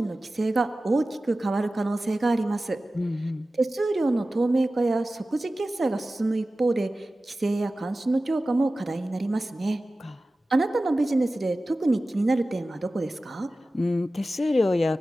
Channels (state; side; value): normal; both; correlation 0.96